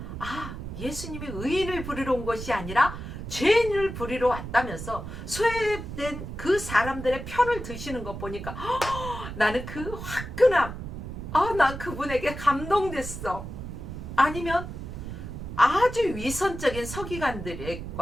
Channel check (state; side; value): noise; right; rumble, 8 dB below the sound